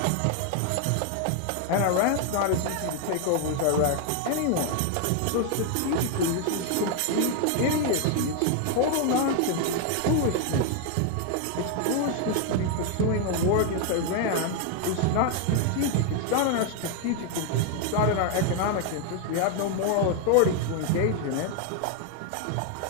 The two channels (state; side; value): different; both; correlation 0.00